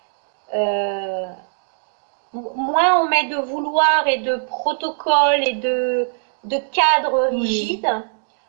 Euh, Moins on met de vouloir et de protocoles et de cadres Oui, rigides,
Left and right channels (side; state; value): left; silent; digital silence